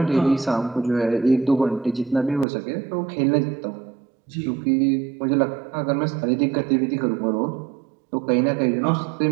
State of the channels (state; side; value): drops out; left; at 2.5 s